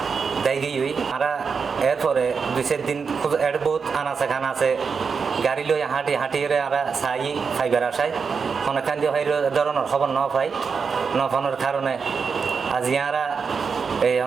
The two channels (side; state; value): left; quieter; 5.6 dB